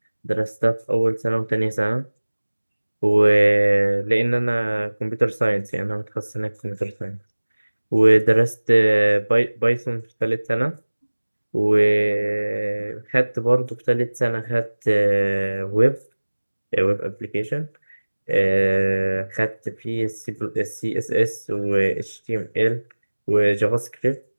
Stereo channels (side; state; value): both; inverted; correlation -1.00